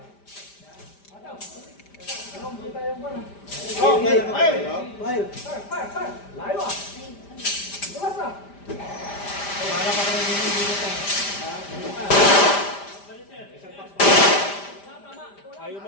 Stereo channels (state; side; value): late; right; 5.0 ms